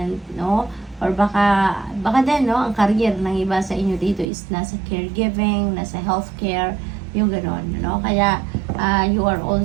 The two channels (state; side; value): drops out; left; at 4.2 s